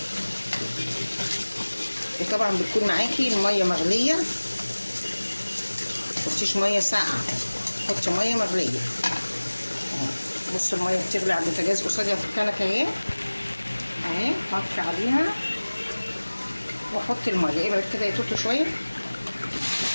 وطبعا بتكون معاكي الميه مغليه، متحطيش ميه ساقعه تحطي ميه مغليه. بصوا الميه بتغلي على البوتاجاز قصادي في الكنكه اهي اهي. هطفي عليها واحط الميه. ابعد كده يطوطوا شويه.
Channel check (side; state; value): both; inverted; correlation -1.00